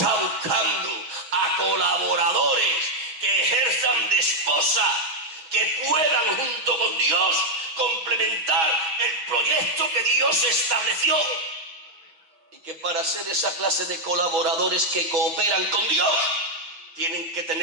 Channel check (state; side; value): late; left; 6.2 ms